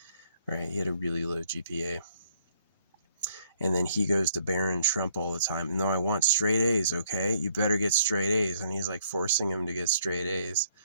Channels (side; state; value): both; inverted; correlation -0.67